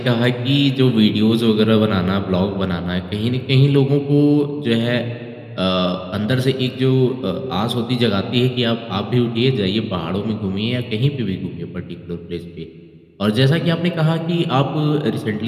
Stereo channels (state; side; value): identical; both; correlation 1.00